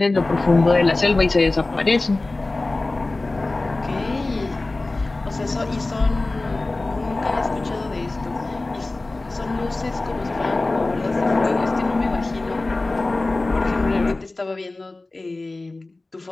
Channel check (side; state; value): right; quieter; 3.1 dB